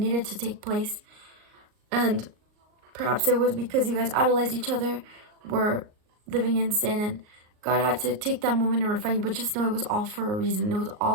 to take place. And perhaps it was because you guys idolized each other, were living in sin, and God had to take that moment and refine you. But just know it was all for a reason. It was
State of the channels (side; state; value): left; late; 38 ms